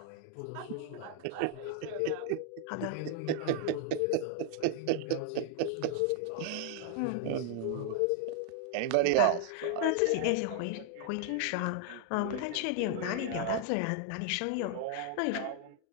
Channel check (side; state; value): both; different; correlation 0.00